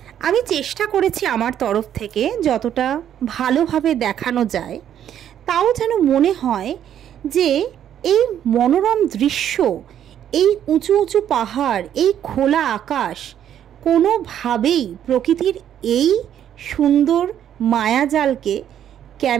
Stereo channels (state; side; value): quieter; left; 10.1 dB